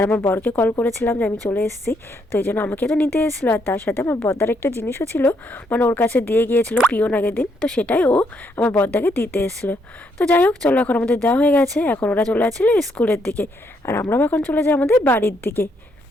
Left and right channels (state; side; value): normal; both; correlation 0.74